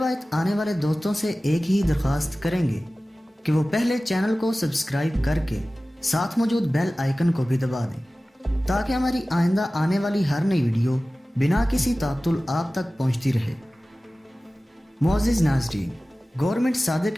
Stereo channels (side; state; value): both; normal; correlation 0.97